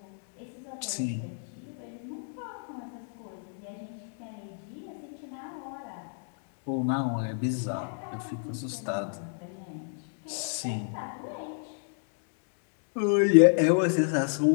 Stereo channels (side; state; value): right; silent; digital silence